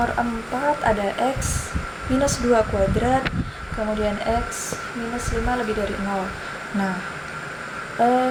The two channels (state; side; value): identical; both; correlation 1.00